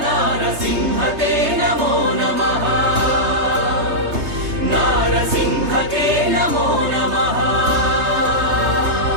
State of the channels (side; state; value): left; late; 3.3 ms